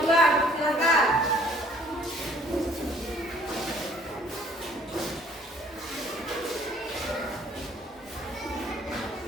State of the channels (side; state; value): both; normal; correlation 0.57